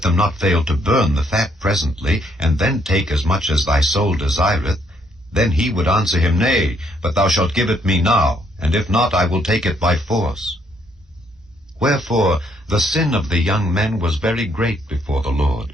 not fail to burn the fat presently, and then take as much as thy soul desireth, then he would answer him, Nay, but thou shalt give it me now, and if not, I will take it by force. Wherefore the sin of the young men was very great before the Lord,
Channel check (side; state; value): both; normal; correlation 0.70